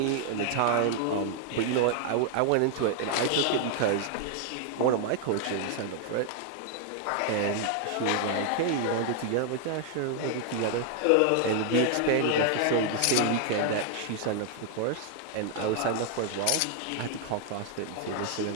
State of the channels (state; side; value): different; both; correlation 0.00